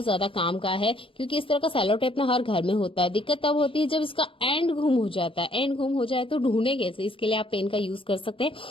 ज्यादा काम का है क्योंकि इस तरह का सेलो टेप ना हर घर में होता है। दिक्कत होती है जब इसका एंड गुम हो जाता है। एंड गुम हो जाए तो ढूंढे कैसे, इसके लिए आप पेन का यूज कर सकते हैं।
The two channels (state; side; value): late; right; 0.26 ms